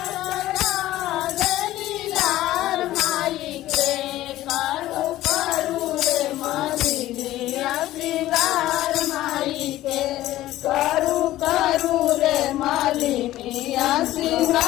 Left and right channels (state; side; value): quieter; right; 15.1 dB